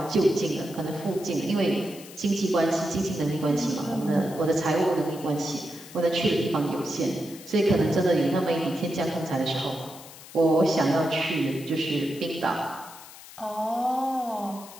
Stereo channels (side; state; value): left; noise; hiss, 17 dB below the sound